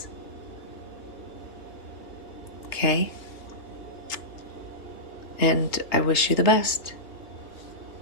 Okay? And I wish you the best.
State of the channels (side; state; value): right; late; 3.2 ms